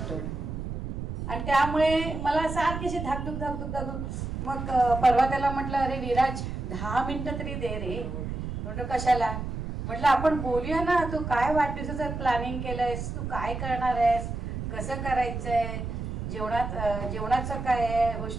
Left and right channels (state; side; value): noise; right; rumble, 5 dB below the sound